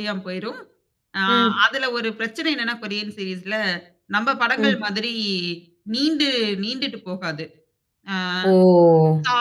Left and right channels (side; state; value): both; identical; correlation 1.00